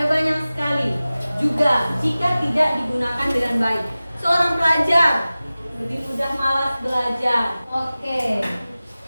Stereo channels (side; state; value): both; inverted; correlation -0.97